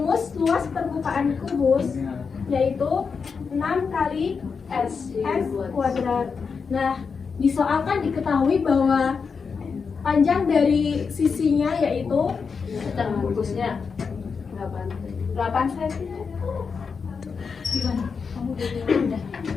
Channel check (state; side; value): quieter; right; 5.5 dB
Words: luas permukaan kubus yaitu 6 kali S kuadrat. Nah, di soal kan diketahui bahwa panjang dari sisinya yaitu Bungkusnya 8 cm. Gimana? Kamu udah.